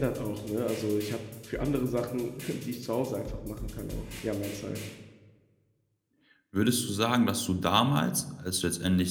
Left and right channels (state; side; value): identical; both; correlation 1.00